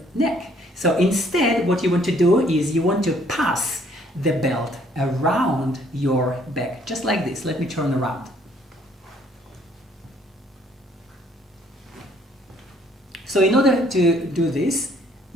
neck. So instead, what you want to do is you want to pass the belt around your back, just like this. Let me turn around. So in order to do this,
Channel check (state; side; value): normal; both; correlation 0.63